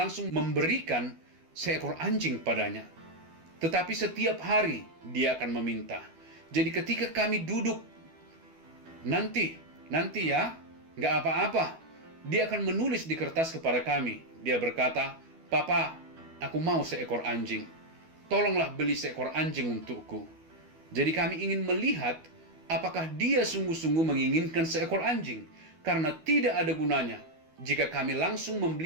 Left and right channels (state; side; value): late; left; 12 ms